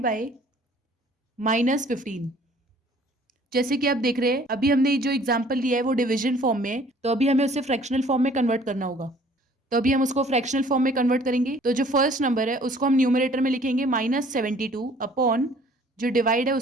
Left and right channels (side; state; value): both; normal; correlation 0.55